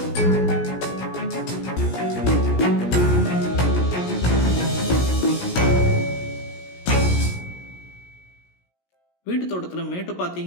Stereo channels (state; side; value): late; right; 17 ms